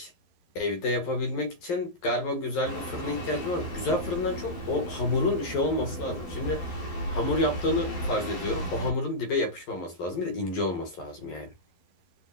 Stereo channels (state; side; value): late; right; 11 ms